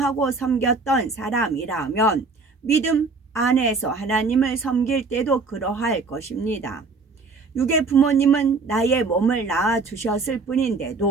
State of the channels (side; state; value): left; quieter; 4.1 dB